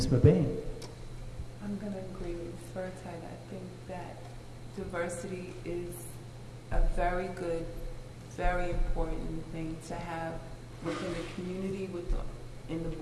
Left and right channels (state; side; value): identical; both; correlation 1.00